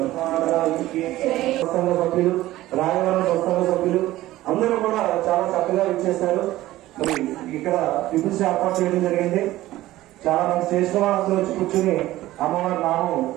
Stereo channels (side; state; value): left; quieter; 16.0 dB